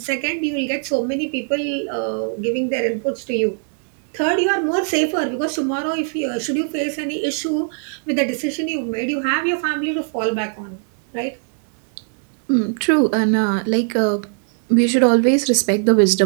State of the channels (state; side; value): silent; left; 57 dB below the other